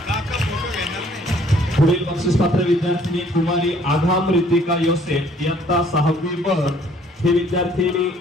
पुढील बक्षीस पात्र विद्यार्थिनी कुमारी आघाम रितिका योसेफ इयत्ता 6वी ब ही विद्यार्थिनी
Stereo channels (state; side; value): normal; both; correlation 0.60